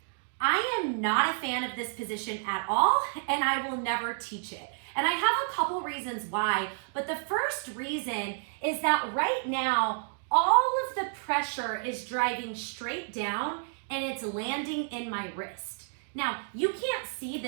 I am not a fan of this position at all, and I will never teach it. And I have a couple reasons why, but the first reason is that right now, all of the pressure is driving straight down and it's landing in my wrist. Now, you can't see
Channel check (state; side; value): silent; left; digital silence